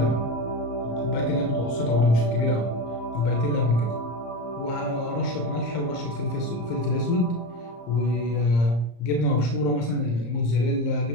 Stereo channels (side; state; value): right; late; 34 ms